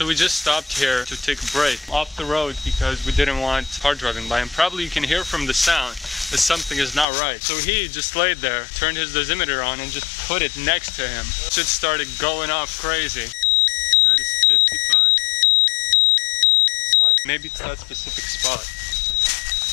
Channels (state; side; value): drops out; right; at 7.1 s